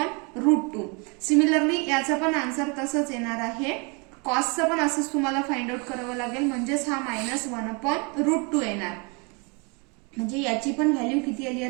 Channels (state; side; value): quieter; left; 32.2 dB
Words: √2. सिमिलरली याचा पण आन्सर तसंच येणार आहे, कॉसचं पण असंच तुम्हाला फाइंड आउट करावं लागेल म्हणजेच हा मायनस 1 अपॉन √2 येणार, म्हणजे याची पण व्हॅल्यू किती आली